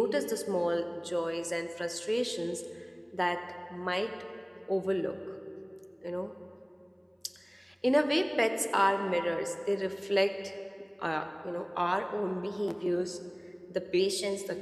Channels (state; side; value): identical; both; correlation 1.00